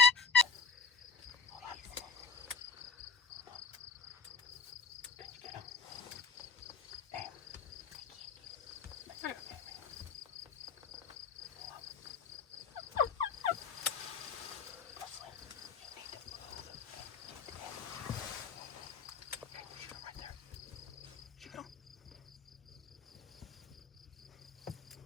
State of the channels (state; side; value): quieter; right; 5.3 dB